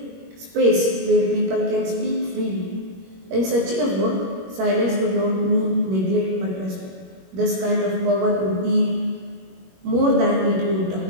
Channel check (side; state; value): left; late; 21 ms